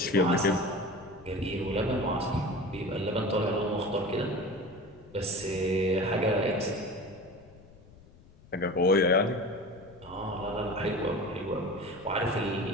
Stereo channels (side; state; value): left; noise; rumble, 24 dB below the sound